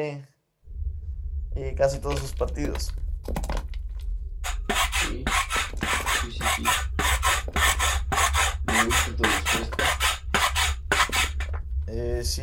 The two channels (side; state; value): both; identical; correlation 1.00